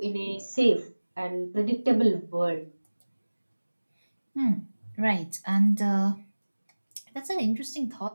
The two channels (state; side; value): inverted; both; correlation -1.00